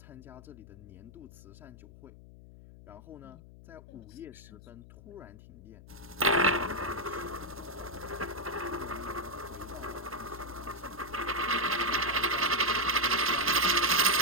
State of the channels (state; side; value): noise; left; hum, 18 dB below the sound